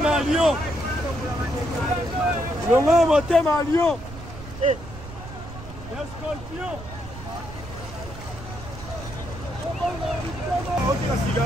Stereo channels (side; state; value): right; noise; rumble, 13 dB below the sound